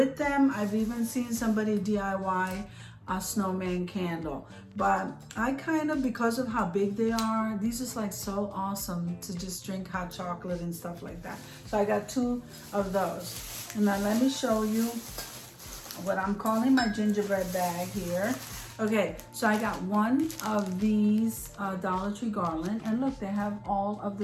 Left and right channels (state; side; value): identical; both; correlation 1.00